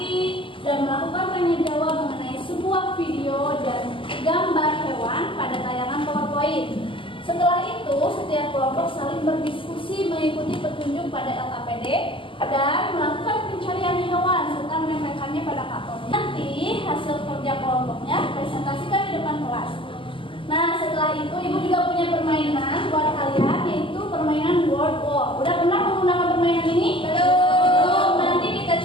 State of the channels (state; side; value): late; right; 0.25 ms